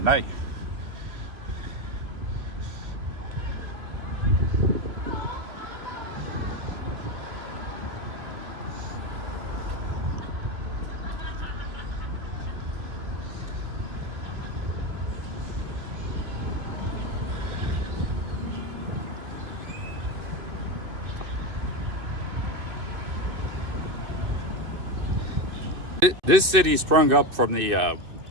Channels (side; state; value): left; late; 2.6 ms